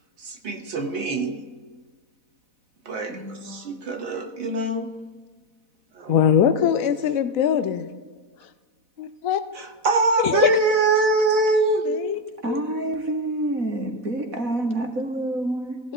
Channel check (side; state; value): left; late; 4.1 ms